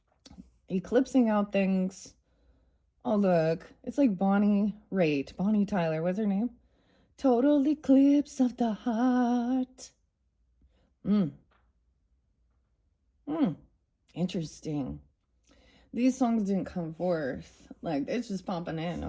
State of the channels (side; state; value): both; identical; correlation 1.00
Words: eclipsing out things. Oh, look, it's like Bonnie Tyler, what's her name? Total eclipse of the heart. Interesting. These songs didn't come forth. Like, it's just popping in,